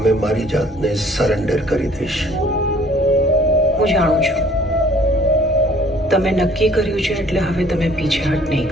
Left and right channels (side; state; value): both; normal; correlation 0.56